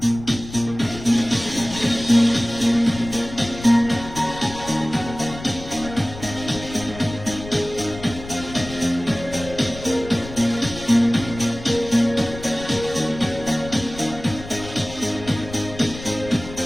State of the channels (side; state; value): left; noise; rumble, 13 dB below the sound